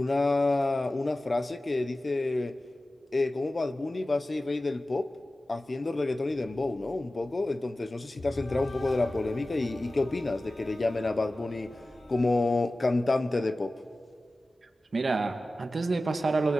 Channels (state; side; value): normal; both; correlation 0.96